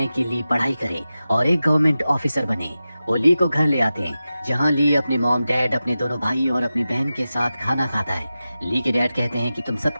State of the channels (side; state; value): both; inverted; correlation -0.94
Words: कि ली पढ़ाई करे और एक गवर्नमेंट ऑफिसर बने। वो ली को घर ले आते हैं, जहां ली अपने मॉम डैड, अपने दोनों भाई और अपनी बहन के साथ खाना खाता है। ली के डैड कहते हैं कि तुम